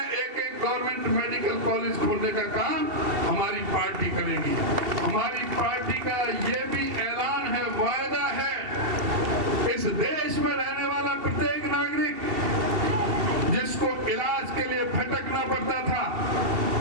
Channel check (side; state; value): left; late; 2.7 ms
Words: एक गवर्नमेंट मेडिकल कॉलेज खोलने का काम हमारी पार्टी करेगी। हमारी पार्टी का ये भी ऐलान है, वायदा है, इस देश में रहने वाला प्रत्येक नागरिक जिसको इलाज के लिए भटकना पड़ता था